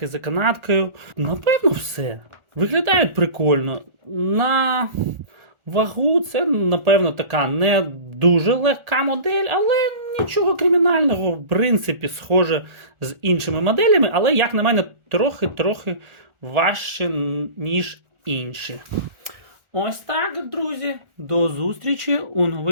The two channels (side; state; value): left; late; 1.4 ms